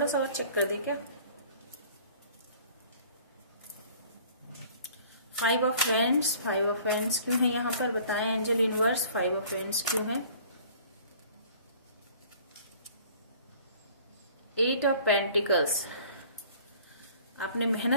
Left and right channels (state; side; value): inverted; both; correlation -0.51